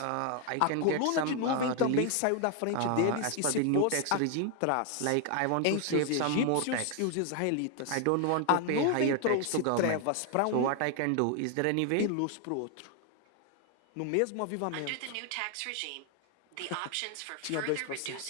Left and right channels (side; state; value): both; different; correlation 0.01